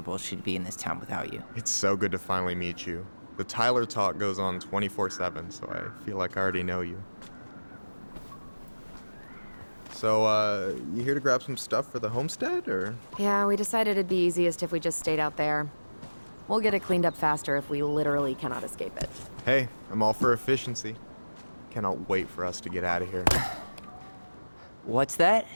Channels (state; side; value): inverted; both; correlation -1.00